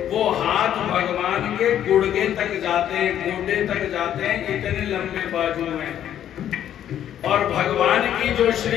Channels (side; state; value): right; quieter; 10.6 dB